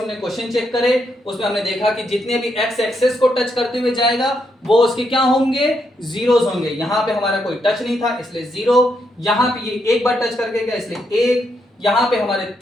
क्वेश्चन चेक करे, उसमें हमने देखा कि जितने भी एक्स एक्सेस को टच करते हुए जाएगा वो उसके क्या होंगे? जीरोस होंगे। यहां पे हमारा कोई टच नहीं था इसलिए जीरो, यहां पे ये एक बार टच करके गया इसलिए एक, यहां पे हमारे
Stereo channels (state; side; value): normal; both; correlation 0.79